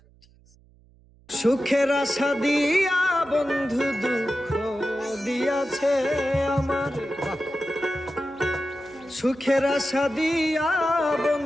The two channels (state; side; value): noise; right; hum, 29 dB below the sound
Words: সুখের আশা দিয়া বন্ধু দুঃখ দিয়াছে আমার, সুখের আশা দিয়া